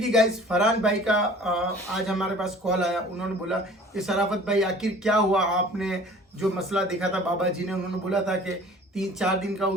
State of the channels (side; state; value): both; normal; correlation 0.47